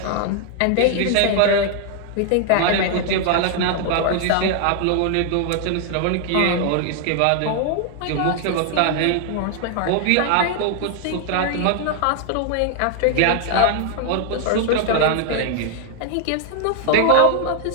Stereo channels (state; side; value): different; both; correlation 0.00